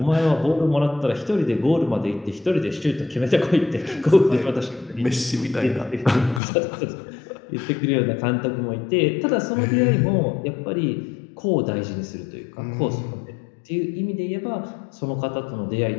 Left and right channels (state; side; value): drops out; right; at 6.4 s